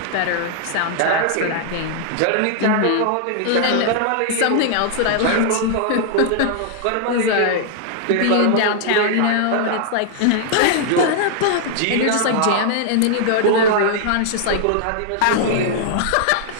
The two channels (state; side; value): different; both; correlation -0.01